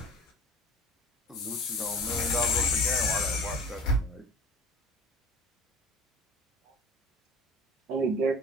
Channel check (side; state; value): both; normal; correlation 0.39